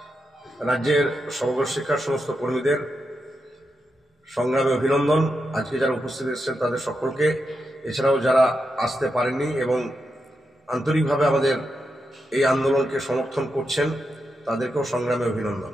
রাজ্যের সমগ্র শিক্ষার সমস্ত কর্মীদের সংগ্রামে অভিনন্দন। আজকে যারা উপস্থিত এসেছেন তাদের সকলকে, এছাড়াও যারা আসতে পারেননি এবং আন্তরিকভাবে আমাদের এই আন্দোলনকে সমর্থন করছেন তাদেরকেও সংগ্রামে অভিনন্দন।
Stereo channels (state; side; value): normal; both; correlation 0.86